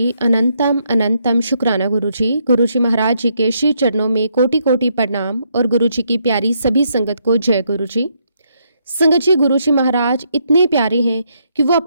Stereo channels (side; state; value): both; inverted; correlation -0.75